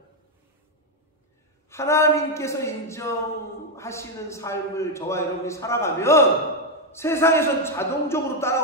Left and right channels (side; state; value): both; normal; correlation 0.03